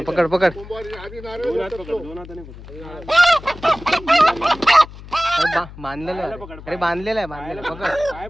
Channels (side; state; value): left; noise; hum, 16 dB below the sound